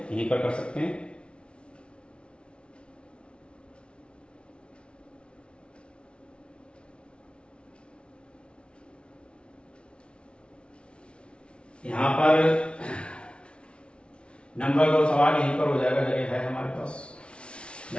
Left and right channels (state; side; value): late; right; 0.058 ms